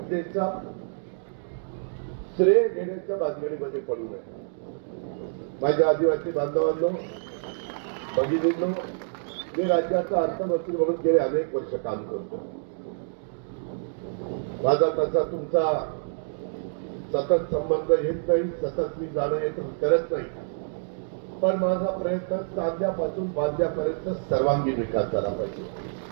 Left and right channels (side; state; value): left; silent; digital silence